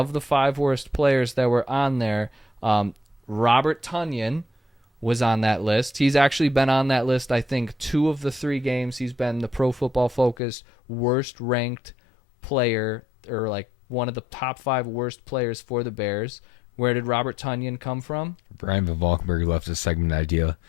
the 5 worst players that were on there, Robert Tonyan was on that list. He's actually been on that list, I think, 2 of the 3 games. He's been the Pro Football Focus worst ranked player, or like one of the top 5 worst players for the Bears. Where did Robert Tonyan come from? Brian Valkenburg left a segment idea.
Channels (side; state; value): right; drops out; at 10.4 s